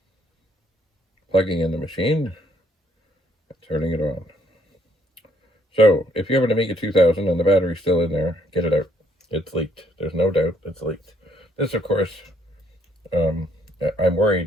plugging in the machine, and turning it on. So, if you have an Amiga 2000 and the battery's still in there, get it out. It's leaked. There's no doubt it's leaked. This, of course, I'm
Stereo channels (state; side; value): normal; both; correlation 0.67